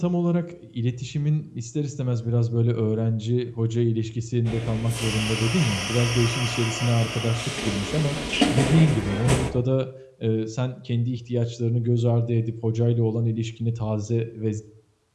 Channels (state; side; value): identical; both; correlation 1.00